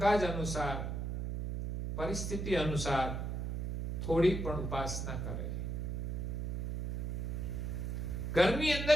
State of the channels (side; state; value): right; noise; hum, 3 dB below the sound